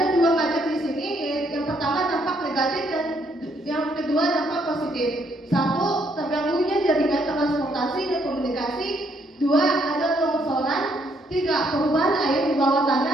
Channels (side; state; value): both; normal; correlation 0.71